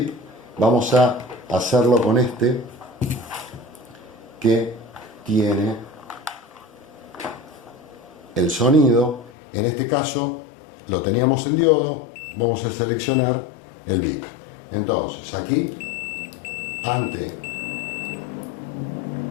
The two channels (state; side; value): drops out; right; at 9.3 s